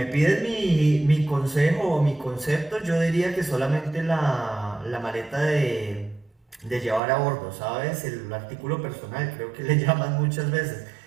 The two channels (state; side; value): drops out; left; at 7.0 s